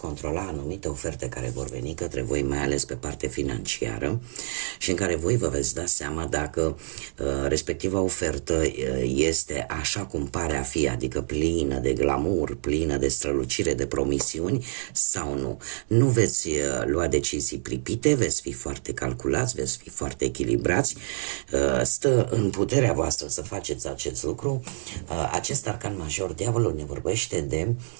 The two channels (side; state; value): left; silent; 56 dB below the other